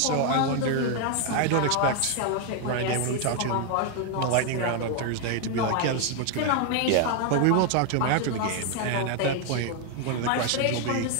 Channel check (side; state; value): both; different; correlation 0.00